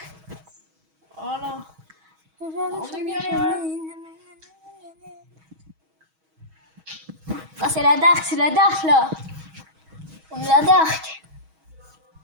Voilà. Aujourd'hui, On je est suis bien bien là. sonné. Ah, c'est la dark là. On est la dark.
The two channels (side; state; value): left; late; 6.3 ms